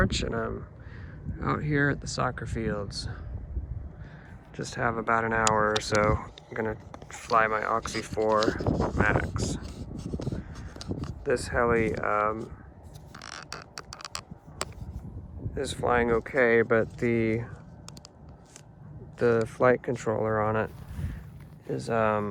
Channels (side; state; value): both; identical; correlation 1.00